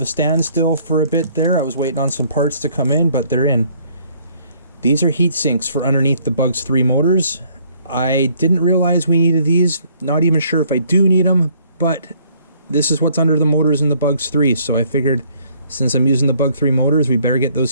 a standstill for a bit there. I was waiting on some parts to come in, but they're in. These are heat sinks for underneath the Bugs 3 motors. I didn't realize we needed these. Not even sure if I do need them, but this is what's under the motors in the Bugs 3, so I figured since I'm using the Bug 3 motors, we better get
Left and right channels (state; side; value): inverted; both; correlation -0.63